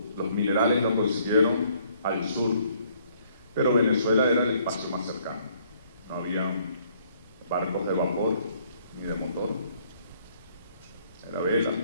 los minerales los consiguieron al sur, pero Venezuela era el espacio más cercano. No había barcos de vapor ni de motor, era vela.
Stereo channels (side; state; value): both; inverted; correlation -0.65